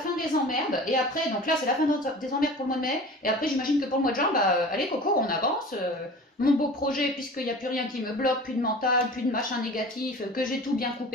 des emmerdes, et après, donc là c'est la fin des emmerdes pour le mois de mai, et après j'imagine que pour le mois de juin, bah allez Coco, on avance, mon beau projet, puisqu'il n'y a plus rien qui me bloque, plus de mental, plus de machin négatif, que j'ai tout bien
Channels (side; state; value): both; normal; correlation 0.39